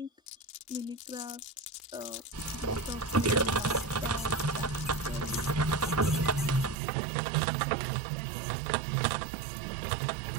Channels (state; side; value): drops out; left; at 6.8 s